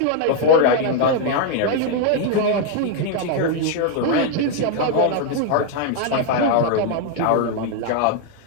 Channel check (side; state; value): both; different; correlation 0.00